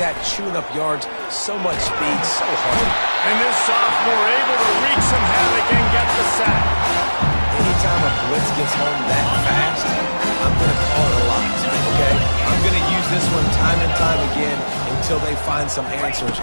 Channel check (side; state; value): both; inverted; correlation -1.00